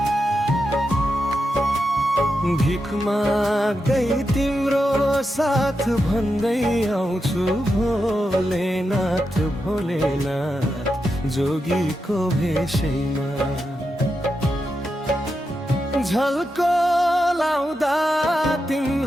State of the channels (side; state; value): both; normal; correlation 0.87